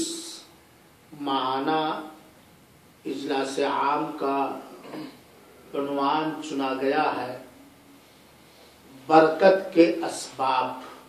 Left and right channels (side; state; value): both; identical; correlation 1.00